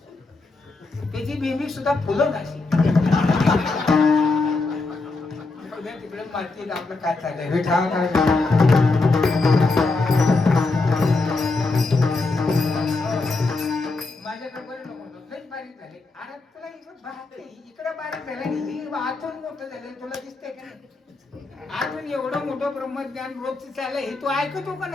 त्याची बिंबी सुद्धा फुलं नाशी. तिकडे मातीत आपलं काय चाललंय विठा काय माझ्याकडे बरे नको लई बारीक झाले. अरे तुला इकडे बारीक झालं, आतून मोठं झालं, तुला दिसतंय का नाही? आतून एवढं मोठं ब्रह्मज्ञान रोजच चाललंय, हे तू ऐकतो का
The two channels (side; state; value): right; quieter; 3.5 dB